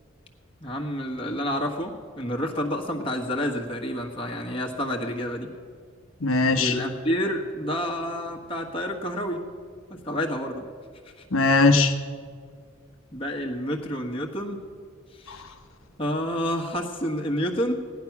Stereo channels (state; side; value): normal; both; correlation 0.45